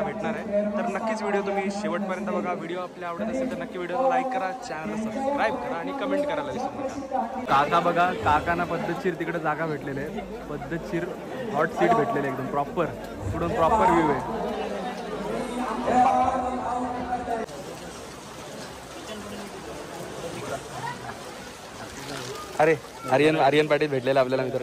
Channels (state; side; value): identical; both; correlation 1.00